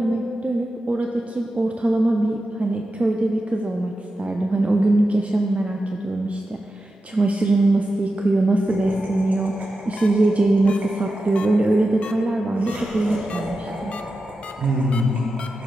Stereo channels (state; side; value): normal; both; correlation 0.91